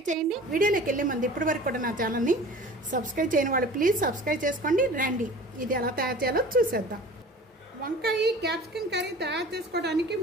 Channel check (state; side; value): normal; both; correlation 0.42